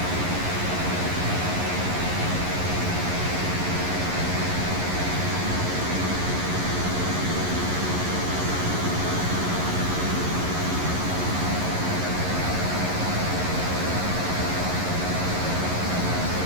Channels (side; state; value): left; late; 11 ms